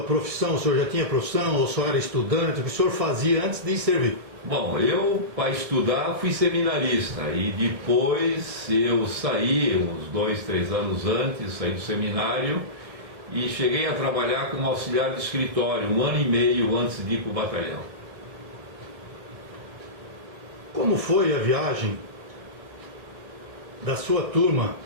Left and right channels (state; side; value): late; left; 1.6 ms